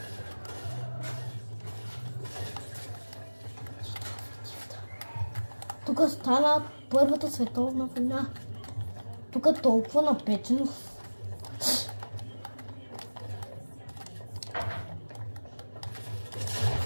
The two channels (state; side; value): inverted; both; correlation -1.00